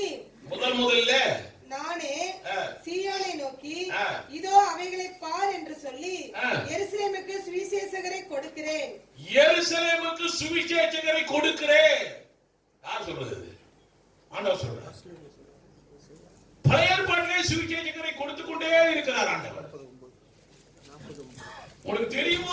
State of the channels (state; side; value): identical; both; correlation 1.00